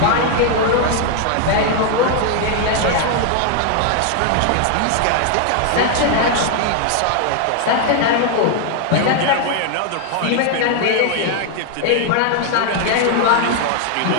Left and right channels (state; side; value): different; both; correlation 0.00